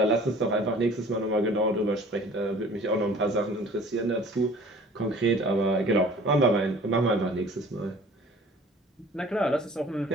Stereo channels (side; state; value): both; normal; correlation 0.49